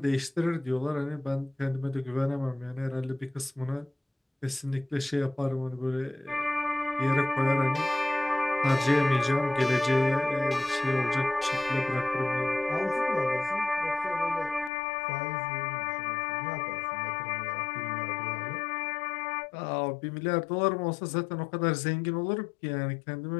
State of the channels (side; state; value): right; drops out; at 14.7 s